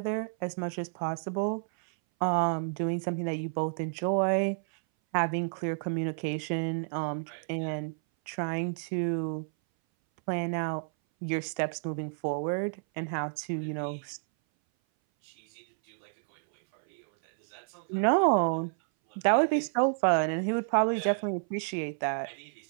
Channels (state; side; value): silent; left; 58 dB below the other